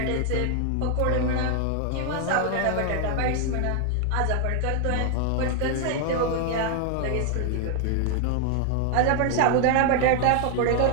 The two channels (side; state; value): both; different; correlation 0.00